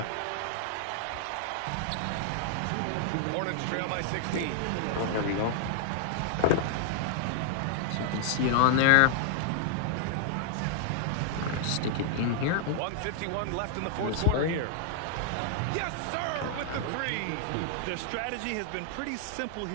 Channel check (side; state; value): both; different; correlation 0.00